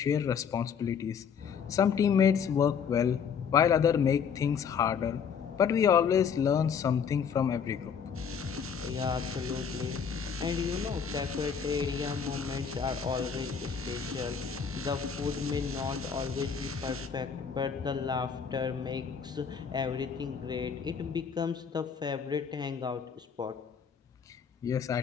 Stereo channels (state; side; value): quieter; right; 6.8 dB